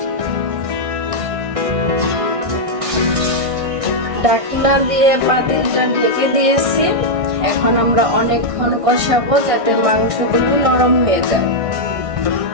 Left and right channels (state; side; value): late; left; 1.6 ms